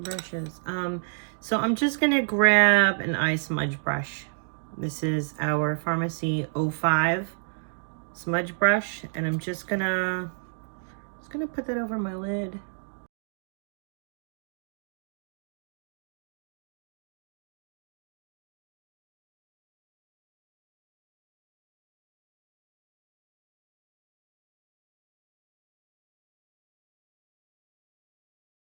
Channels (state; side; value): silent; left; digital silence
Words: So I'm just going to grab an eye smudge brush. This is our Farmasi 05 smudge brush, and I'm just gonna put that over my lid.